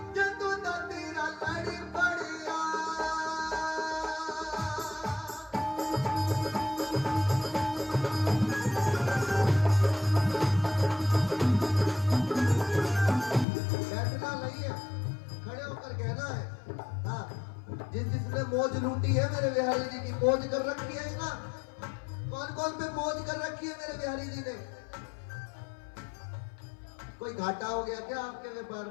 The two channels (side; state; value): right; drops out; at 13.5 s